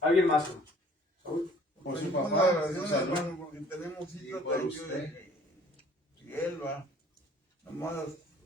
más, hermano? ¿Saúl? Por su su papá, papá, su oración, salud. hermano, porque tenemos Y citas por de usted. y él va. Nomás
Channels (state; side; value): normal; both; correlation 0.54